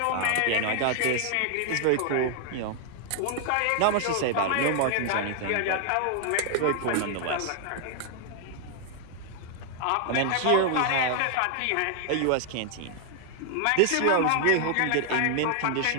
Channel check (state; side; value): different; both; correlation 0.00